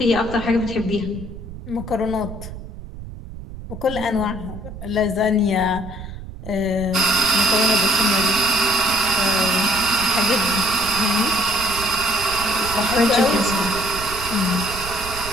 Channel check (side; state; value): right; noise; rumble, 11 dB below the sound